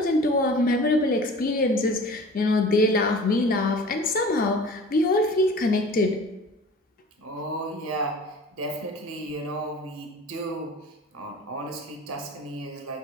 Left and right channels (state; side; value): normal; both; correlation 0.42